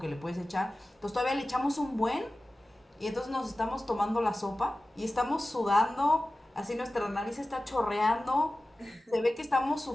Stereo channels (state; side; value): normal; both; correlation 0.96